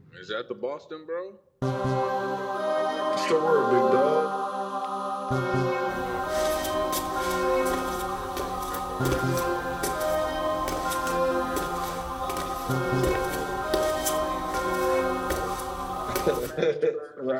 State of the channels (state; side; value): identical; both; correlation 1.00